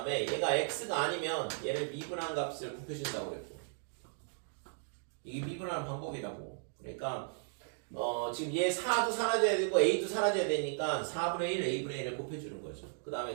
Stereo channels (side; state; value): left; silent; digital silence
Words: 얘가 x가 아니면 얘를 미분한 값을 곱해준다고 그랬고 이게 미분하는 방법이라고. 그러니까 지금 얘 4도 사라져야 되고 a도 사라져야 되니까 4분의 1 a분의 1을 곱해주는 거죠. 그